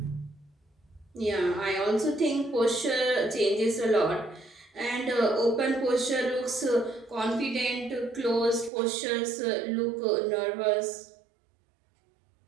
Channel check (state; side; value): drops out; left; at 8.7 s